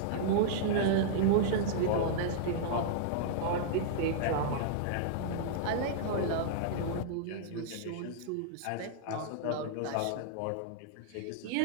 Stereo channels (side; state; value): both; different; correlation -0.02